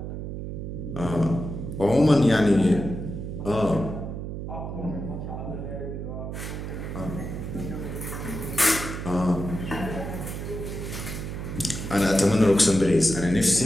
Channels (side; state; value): right; noise; hum, 6 dB below the sound